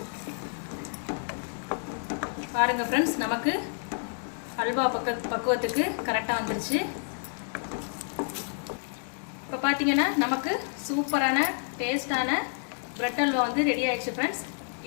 பாருங்கள் ஃப்ரெண்ட்ஸ், நமக்கு அல்வா பக்குவத்துக்கு கரெக்டாக வந்துருச்சு. இப்போ பார்த்தீங்கன்னா நமக்கு சூப்பரான டேஸ்டான பிரெட் அல்வா வந்து ரெடி ஆயிடுச்சு ஃப்ரெண்ட்ஸ்.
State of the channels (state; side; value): silent; right; 58 dB below the other